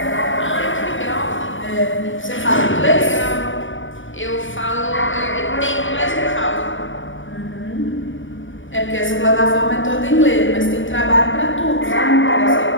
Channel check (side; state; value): right; late; 0.56 ms